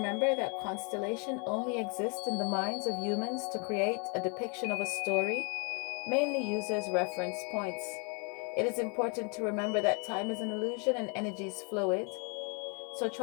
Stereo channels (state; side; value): quieter; right; 35.7 dB